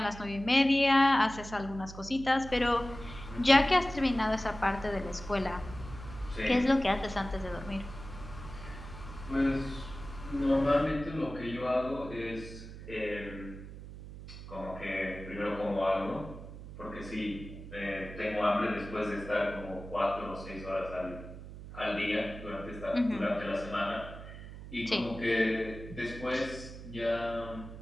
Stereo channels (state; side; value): noise; right; hum, 13 dB below the sound